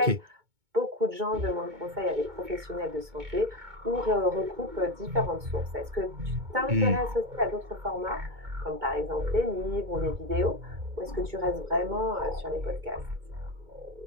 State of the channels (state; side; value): late; left; 2.2 ms